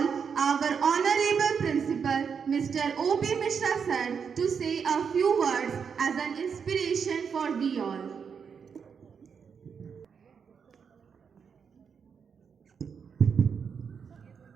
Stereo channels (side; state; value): left; quieter; 6.5 dB